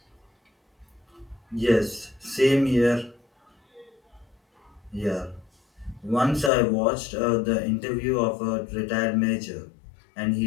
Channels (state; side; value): drops out; right; at 6.5 s